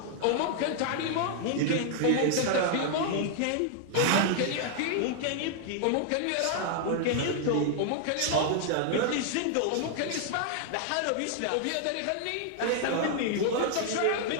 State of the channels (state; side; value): different; both; correlation 0.00